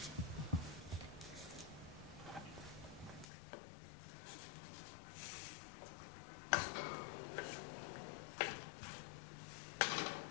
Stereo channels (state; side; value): drops out; right; at 3.2 s